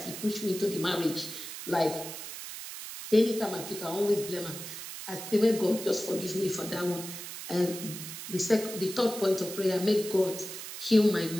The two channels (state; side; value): noise; right; hiss, 9 dB below the sound